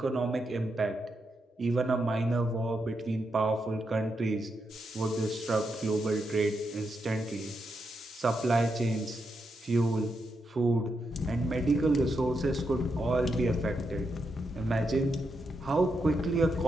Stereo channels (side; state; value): both; normal; correlation 0.83